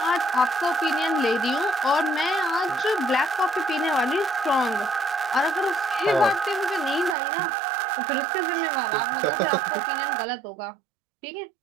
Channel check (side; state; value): left; drops out; at 7.2 s